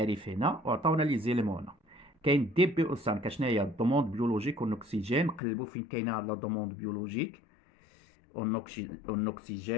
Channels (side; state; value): right; drops out; at 5.4 s